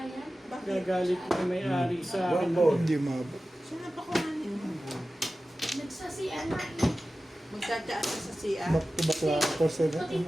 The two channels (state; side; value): normal; both; correlation 0.95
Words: yan. Bakit? Gagalit na may-ari sa akin. Hindi mabot. Sino pa kuhanin mo? Nagsasiyan na eh. Magtsatsaat ka sa CR? Back to back la 4-7. Pati